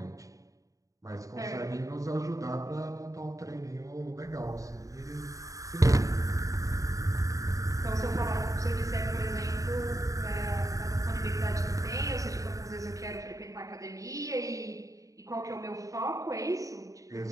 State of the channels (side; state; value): left; late; 0.16 ms